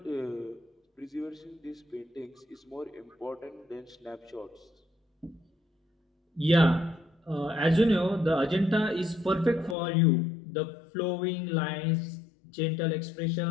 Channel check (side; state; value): right; drops out; at 9.8 s